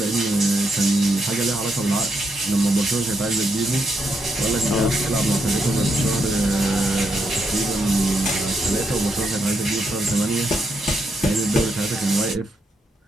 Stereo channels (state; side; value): normal; both; correlation 0.79